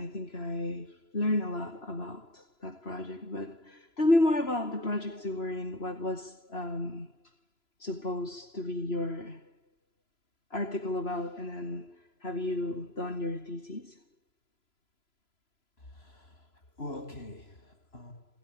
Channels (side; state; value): right; late; 3.0 ms